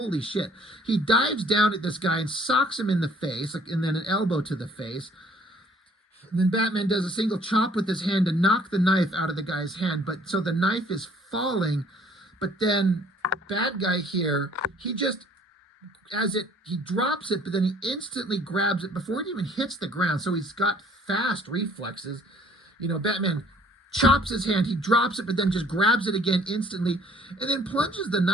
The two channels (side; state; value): both; normal; correlation 0.58